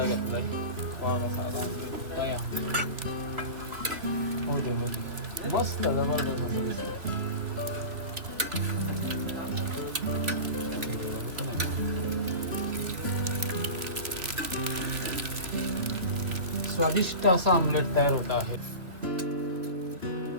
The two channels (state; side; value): late; left; 2.8 ms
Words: घेतलाय. वा साधा ऑमलेट काय हो दे मस्त जबरदस्त मस्त दिसतं. स्वादिष्ट असा ऑमलेट तयार होत आहे.